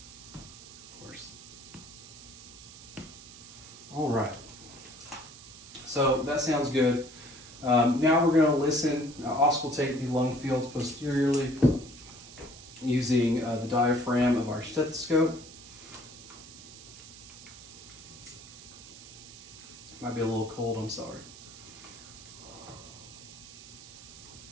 All right. So that sounds good. Now we're going to listen, auscultate the lung fields posteriorly using the diaphragm of our stethoscope. Might be a little cold, I'm sorry.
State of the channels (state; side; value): noise; right; hiss, 17 dB below the sound